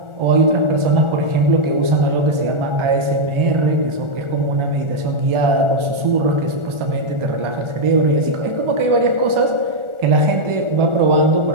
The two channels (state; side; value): late; left; 1.4 ms